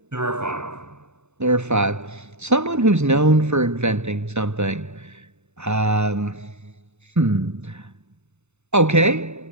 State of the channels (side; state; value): left; late; 0.82 ms